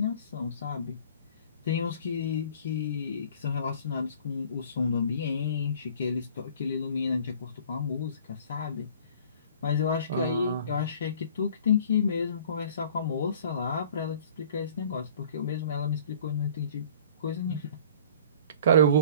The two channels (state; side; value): inverted; both; correlation -0.50